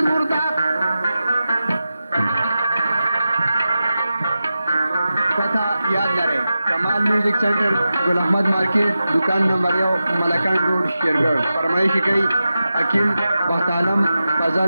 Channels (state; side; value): inverted; both; correlation -0.92